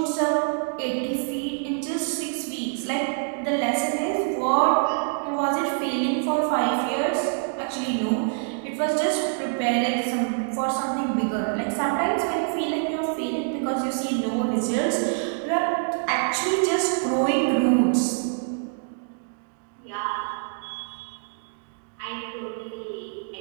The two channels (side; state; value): left; silent; 61 dB below the other